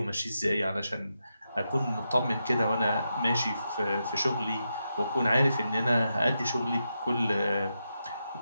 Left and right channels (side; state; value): both; inverted; correlation -0.86